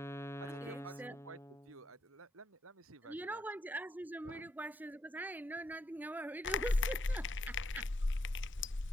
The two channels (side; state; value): both; normal; correlation 0.79